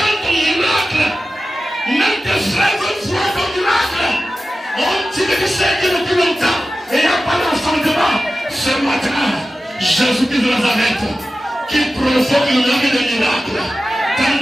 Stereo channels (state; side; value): normal; both; correlation 0.94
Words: ton miracle. Même tes frères voient ton miracle. On dit que tu sais que depuis longtemps, et il n'y a pas d'enfantement. Ce matin, Jésus-Christ de Nazareth, qui provoque le miracle des miracles. Dans